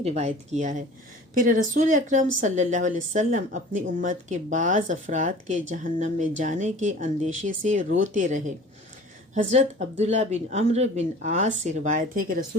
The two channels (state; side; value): normal; both; correlation 0.44